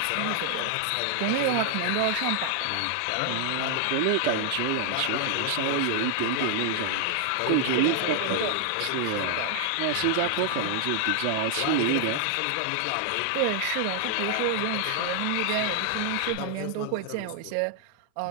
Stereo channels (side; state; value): both; different; correlation 0.00